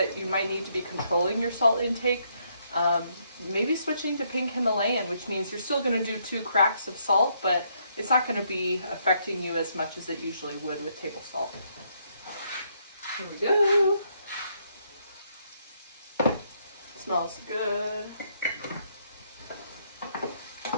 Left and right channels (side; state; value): both; inverted; correlation -0.73